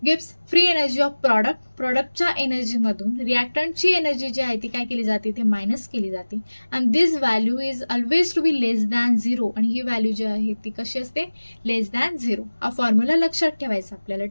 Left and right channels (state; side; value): inverted; both; correlation -1.00